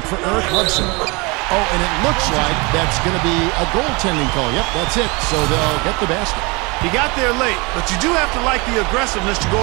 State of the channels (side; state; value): left; quieter; 27.3 dB